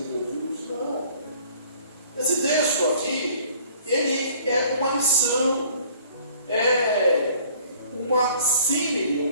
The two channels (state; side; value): inverted; both; correlation -0.55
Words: Jesus, não. Esse texto aqui, ele é uma lição, é uma símile,